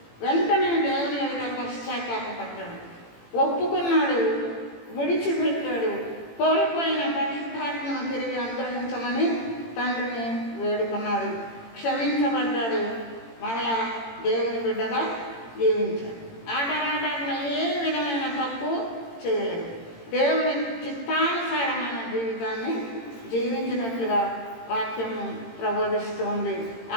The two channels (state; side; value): late; right; 18 ms